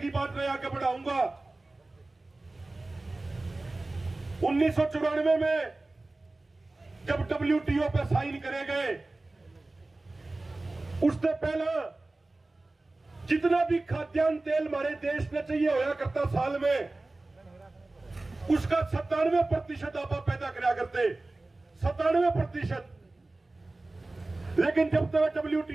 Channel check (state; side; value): quieter; left; 3.0 dB